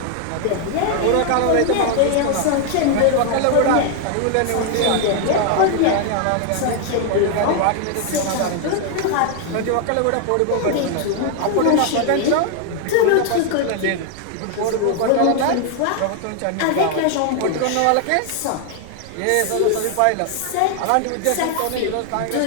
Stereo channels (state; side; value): different; both; correlation 0.00